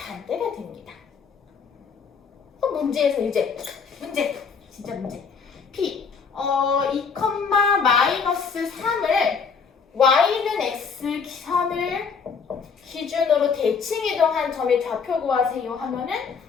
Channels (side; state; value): right; quieter; 5.8 dB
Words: 됩니다. 문제에서 이제 진짜 문제. p 2,-3을 y는 x 선을 기준으로 대칭 이동한 점의 좌표 구하세요 하면은